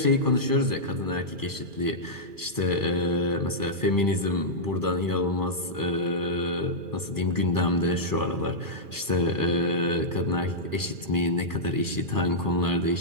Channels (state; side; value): late; left; 2.4 ms